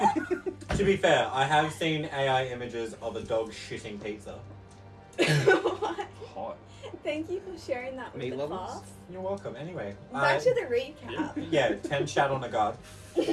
To be fair, I have seen AI images of a dog shitting pizza. What? Hot. Thank you for sharing that with Meat the levels? class. You're welcome. Anyway, Back to the recap. yeah, 10 shat on a guard.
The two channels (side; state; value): both; identical; correlation 1.00